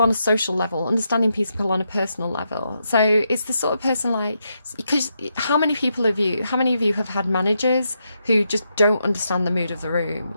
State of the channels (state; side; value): inverted; both; correlation -0.82